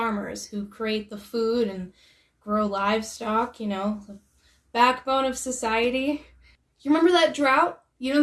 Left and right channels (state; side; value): identical; both; correlation 1.00